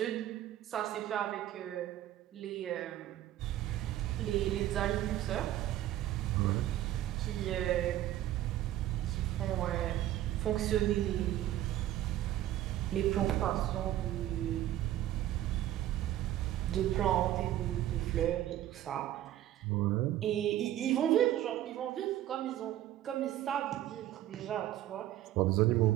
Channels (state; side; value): quieter; left; 13.3 dB